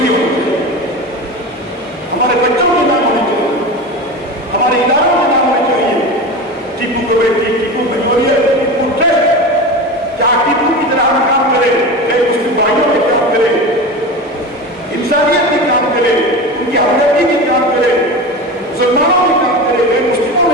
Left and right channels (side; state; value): both; normal; correlation 0.27